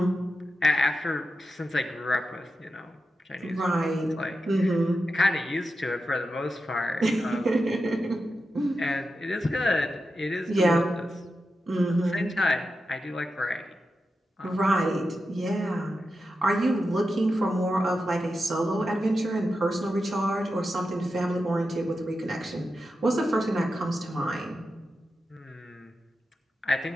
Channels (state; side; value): normal; both; correlation 0.89